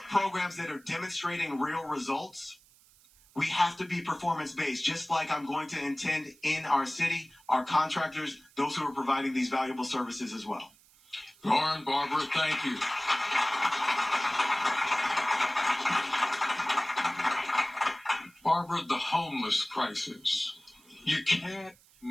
programs that are demonstrating real results We have to be performance-based, just like I'm going to intend in our city, our contractors, those who are providing these valuable services as well. Loren, Barbara, thank you. Barbara, the homeless crisis. You can't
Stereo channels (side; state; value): right; noise; hiss, 28 dB below the sound